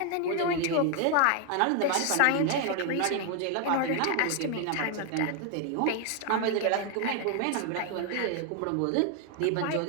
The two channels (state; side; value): different; both; correlation 0.01